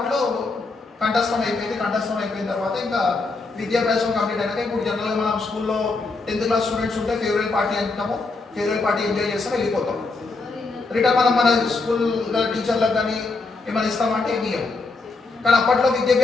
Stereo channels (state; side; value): quieter; right; 3.8 dB